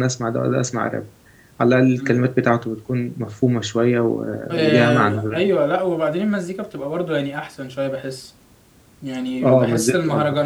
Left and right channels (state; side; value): identical; both; correlation 1.00